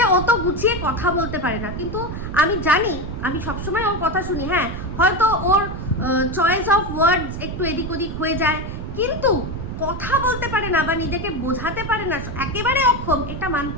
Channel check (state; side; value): noise; right; rumble, 7 dB below the sound